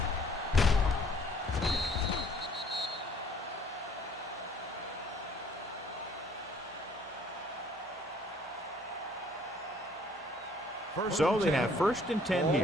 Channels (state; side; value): normal; both; correlation 0.59